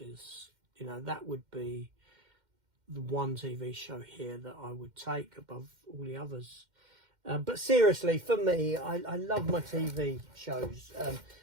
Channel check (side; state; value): left; late; 2.1 ms